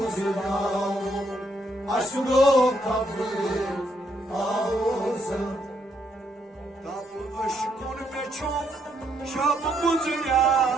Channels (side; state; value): both; normal; correlation 0.74